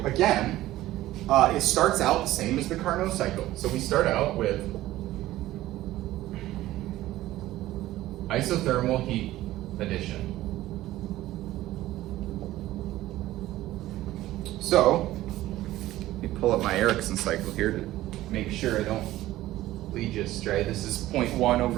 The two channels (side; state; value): left; quieter; 15.6 dB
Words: Again, it starts out the same as the Carnot cycle. So we start out with isothermal heat addition. So, let me pull up my Ericsson cycle here to make sure I don't lead you astray. This is 0.1